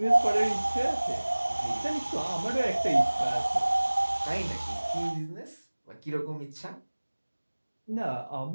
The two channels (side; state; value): both; inverted; correlation -1.00